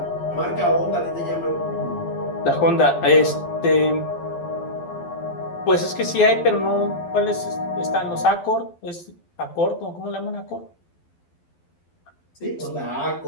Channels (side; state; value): right; late; 12 ms